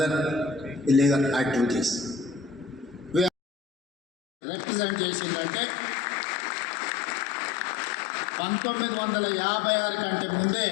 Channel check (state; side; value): drops out; right; at 3.3 s